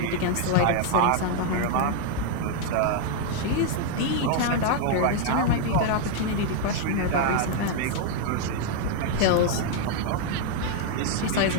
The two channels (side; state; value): both; different; correlation 0.00